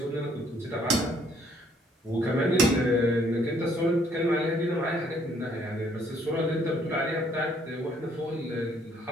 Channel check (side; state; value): both; normal; correlation 0.65